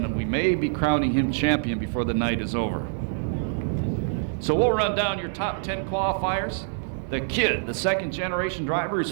we may be crowning him champion before the night is over. So we'll run down your top 10 qualifiers. The kid, the second generation driver, his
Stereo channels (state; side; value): silent; left; digital silence